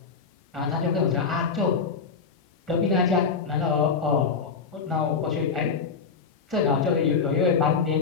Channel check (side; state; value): right; quieter; 5.4 dB